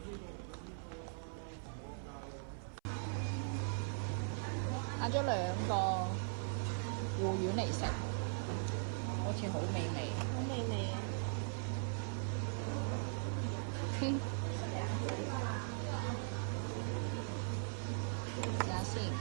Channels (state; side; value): silent; left; 51 dB below the other